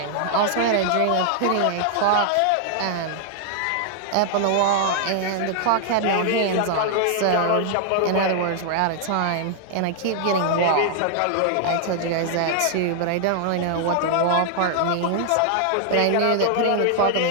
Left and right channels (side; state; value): both; different; correlation 0.00